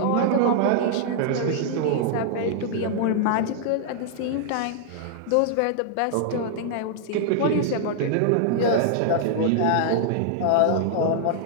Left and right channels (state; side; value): different; both; correlation -0.01